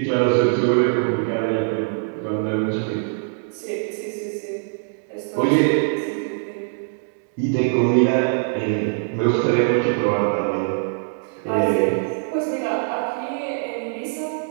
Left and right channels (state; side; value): silent; left; 64 dB below the other